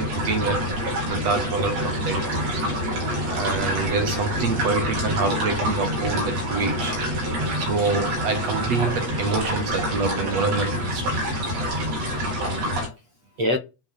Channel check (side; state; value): left; late; 8.3 ms